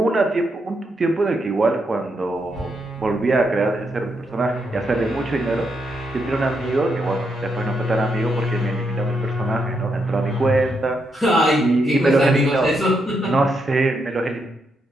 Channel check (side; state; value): both; normal; correlation 0.80